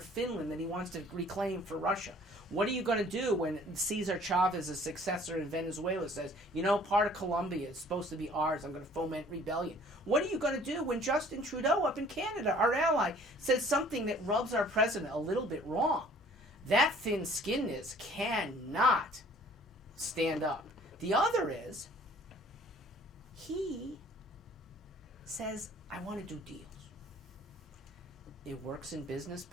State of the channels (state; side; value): normal; both; correlation 0.54